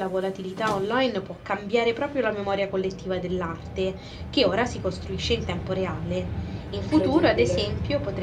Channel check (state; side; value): identical; both; correlation 1.00